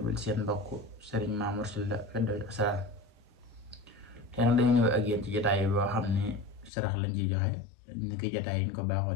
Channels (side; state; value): right; drops out; at 6.7 s